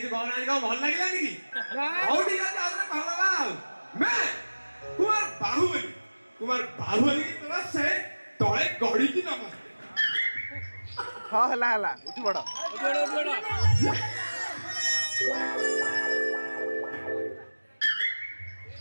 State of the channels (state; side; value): inverted; both; correlation -1.00